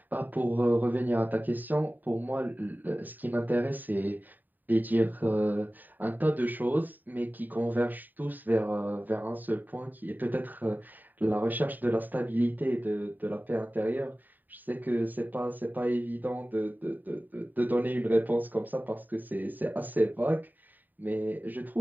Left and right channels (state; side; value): late; left; 0.088 ms